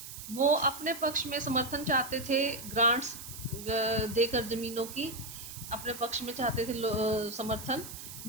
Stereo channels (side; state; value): right; noise; hiss, 11 dB below the sound